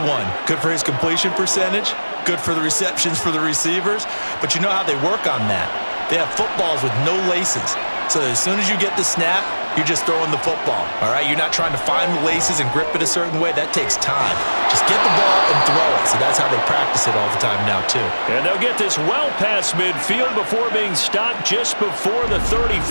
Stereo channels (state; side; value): inverted; both; correlation -1.00